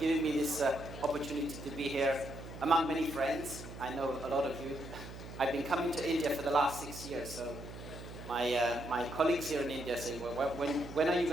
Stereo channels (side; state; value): right; noise; hum, 12 dB below the sound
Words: me this opportunity to be here among many friends. I know a lot of you. I've been coming to India for the last 6 years, so my colleagues here in India say, well, when are you